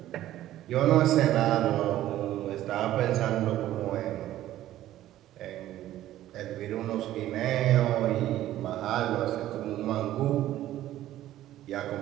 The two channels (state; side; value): quieter; left; 13.7 dB